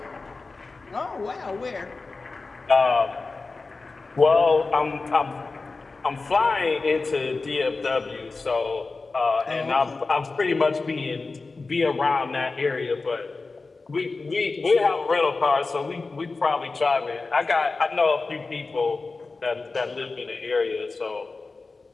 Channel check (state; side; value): quieter; right; 3.8 dB